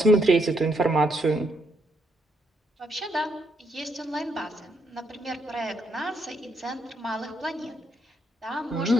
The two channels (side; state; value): both; normal; correlation 0.75